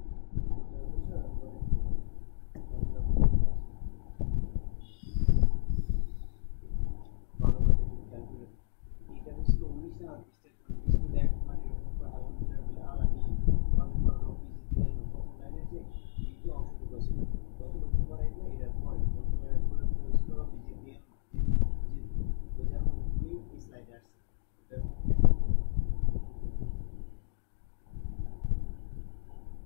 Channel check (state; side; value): silent; right; digital silence